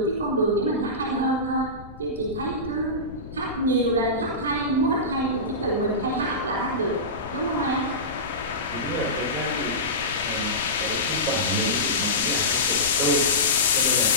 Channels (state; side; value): noise; left; rumble, 16 dB below the sound